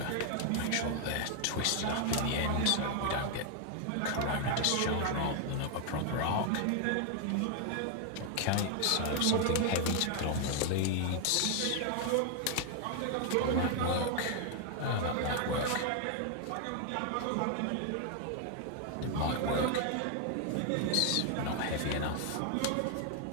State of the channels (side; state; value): both; different; correlation 0.00